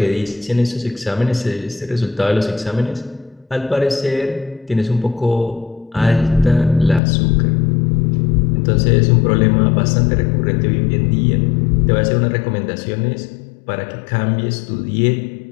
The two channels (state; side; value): drops out; right; at 7.0 s